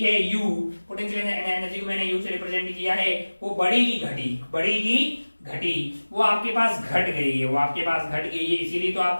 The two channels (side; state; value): both; inverted; correlation -1.00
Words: है u, पोटेंशियल एनर्जी को मैंने u से रिप्रेजेंट किया है, वो बढ़ेगी घटी, बढ़ेगी घटी, वो आपके पास घट गई है, वो आपके पास घट गई है, इसीलिए तो